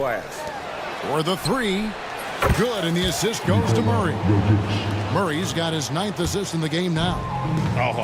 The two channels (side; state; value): both; identical; correlation 1.00